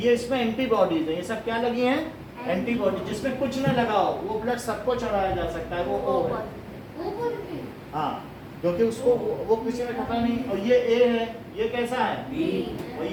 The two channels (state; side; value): identical; both; correlation 1.00